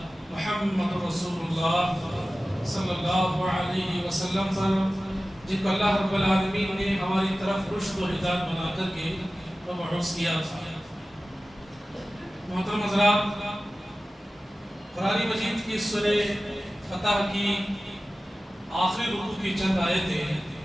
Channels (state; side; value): normal; both; correlation 0.96